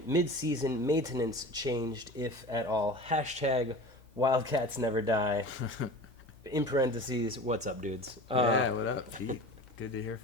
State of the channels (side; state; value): both; normal; correlation 0.36